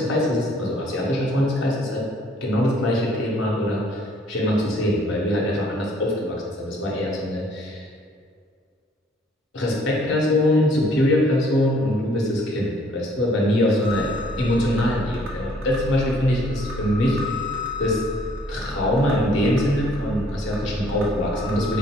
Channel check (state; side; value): normal; both; correlation 0.61